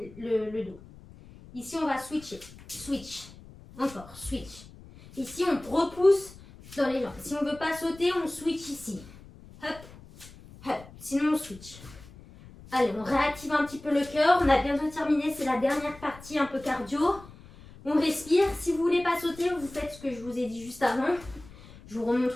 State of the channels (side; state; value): left; noise; rumble, 20 dB below the sound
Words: le dos. Ici, on va switcher. Switch. Encore, switch. Ici, on repousse dans les jambes. Si on ne veut pas sauter, on switch ici. Hop, hop. Sinon, on switch. Allez, on réactive un petit peu le cœur. On a bientôt terminé. C'est la dernière partie un peu cardio. On respire. Si vous ne voulez pas sauter, vous faites ce que je vous ai dit juste avant. Je vous